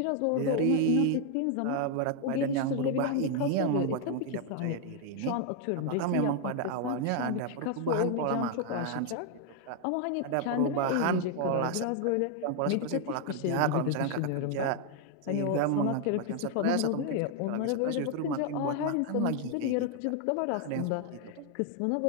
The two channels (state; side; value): different; both; correlation 0.00